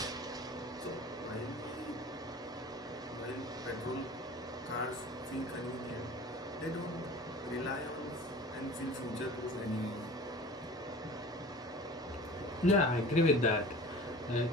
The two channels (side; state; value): both; normal; correlation 0.40